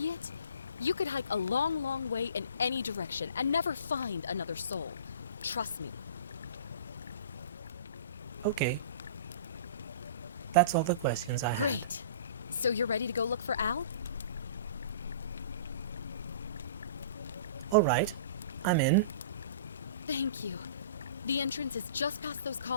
You could hike a long, long way in any direction and never find another soul. Trust me. Okay. That's all the questions I have. Great. So you're ready to go look for Al? Alright, I'm in. Thank you. The entrance is just past those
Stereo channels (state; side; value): inverted; both; correlation -0.41